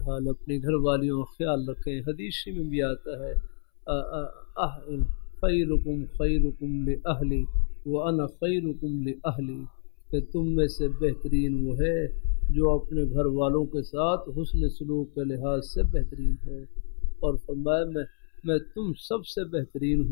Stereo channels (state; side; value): silent; right; 59 dB below the other